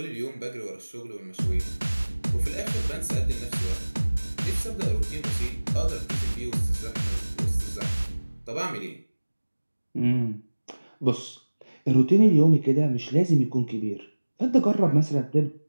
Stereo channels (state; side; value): inverted; both; correlation -1.00